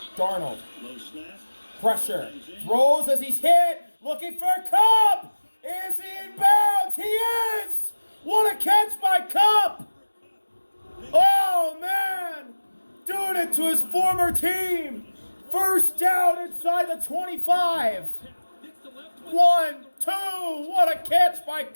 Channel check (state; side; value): inverted; both; correlation -1.00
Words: Darnold. Low snap. Pressure. Throws as he's hit. Looking for Cup. Is he in bounds? He is. What a catch by Cup. Oh, man. Doing it to his former team. First down inside the 25. 1, 2. What a catch by